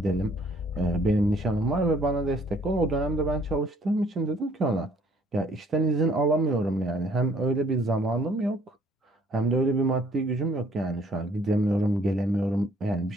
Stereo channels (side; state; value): both; normal; correlation 0.61